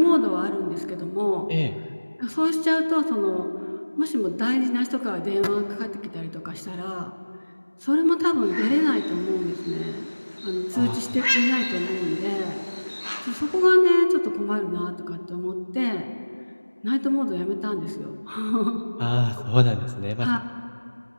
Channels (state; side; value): inverted; both; correlation -1.00